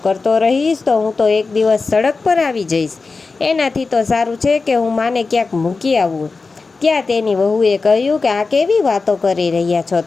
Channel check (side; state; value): right; quieter; 4.2 dB